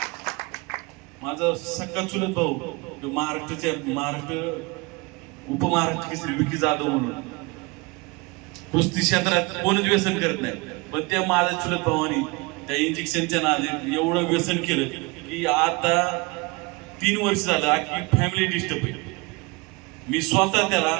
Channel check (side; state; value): left; quieter; 26.4 dB